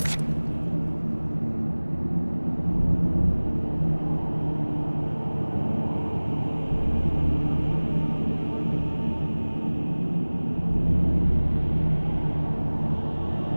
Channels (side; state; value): both; inverted; correlation -1.00